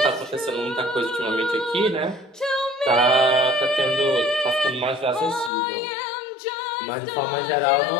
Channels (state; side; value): drops out; right; at 5.5 s